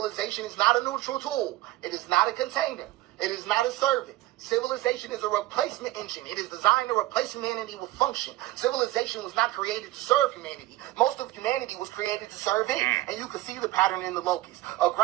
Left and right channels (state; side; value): quieter; left; 17.0 dB